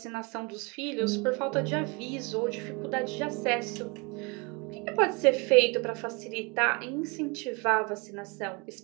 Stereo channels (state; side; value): quieter; left; 29.3 dB